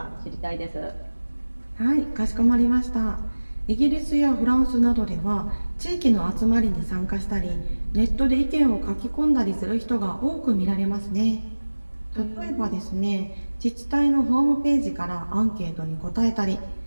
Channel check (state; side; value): inverted; both; correlation -1.00